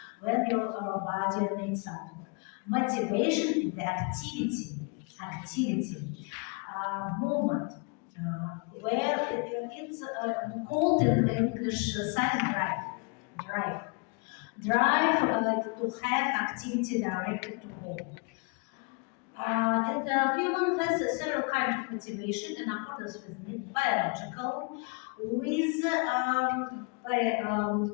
when your body needs something. Motivation is the activity, movement, where it's called in English science drive to have activity directed to goal. And the human has several kinds of motivation in accordance with need, biological, with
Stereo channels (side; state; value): right; quieter; 33.3 dB